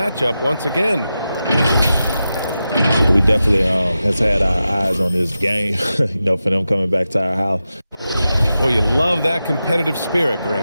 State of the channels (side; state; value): both; inverted; correlation -0.91